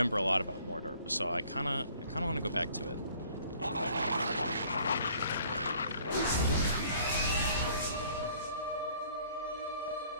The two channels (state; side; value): inverted; both; correlation -0.57